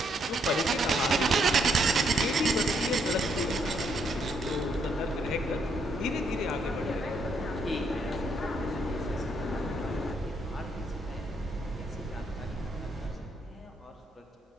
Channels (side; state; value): both; normal; correlation 0.73